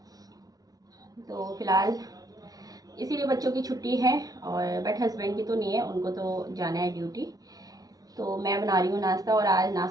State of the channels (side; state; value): left; late; 0.18 ms